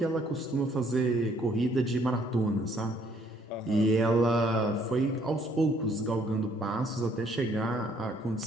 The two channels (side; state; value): both; normal; correlation 0.65